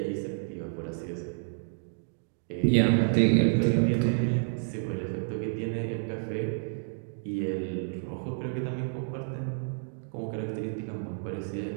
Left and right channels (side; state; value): left; silent; digital silence